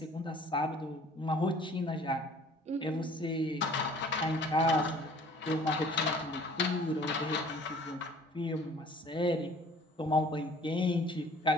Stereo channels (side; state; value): both; normal; correlation 0.52